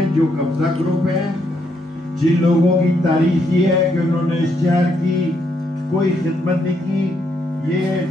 جو قبضہ گروپ ہیں، جن لوگوں کی تاریخ یہ ہے کہ انہوں نے اس شہر کی کوئی خدمت نہیں کی.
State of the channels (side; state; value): both; normal; correlation 0.76